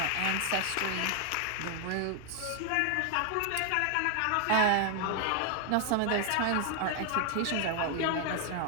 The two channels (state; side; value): different; both; correlation 0.00